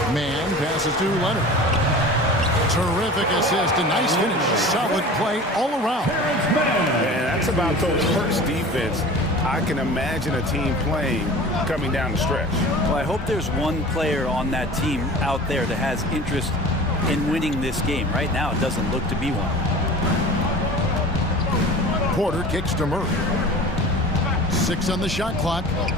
Mann passes to Leonard. Terrific assist, a nice finish. Solid play all around. And that's about Coach Hurt's defense. I can imagine a team playing coming down the stretch. Well, I hope there's one player on that team out there that has interest in winning this game. Right now, it doesn't look to be one. Porter kicks to Murray. 6 on the shot clock.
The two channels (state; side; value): normal; both; correlation 0.39